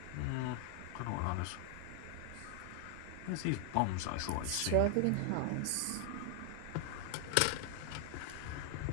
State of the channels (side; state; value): both; different; correlation 0.00